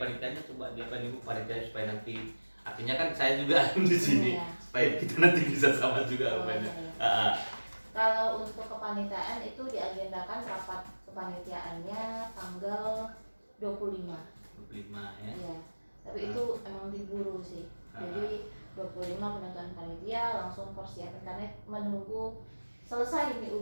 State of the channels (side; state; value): both; inverted; correlation -1.00